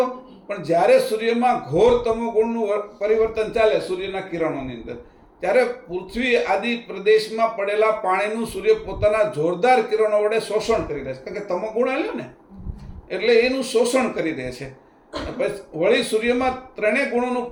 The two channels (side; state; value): both; identical; correlation 1.00